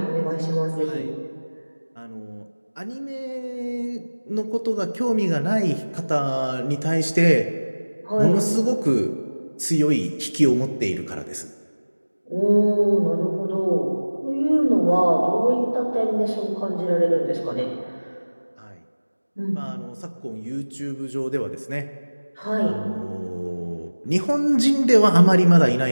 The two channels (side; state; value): both; inverted; correlation -1.00